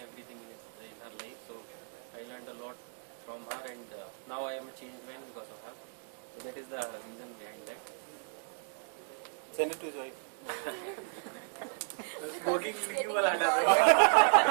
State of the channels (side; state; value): left; silent; 55 dB below the other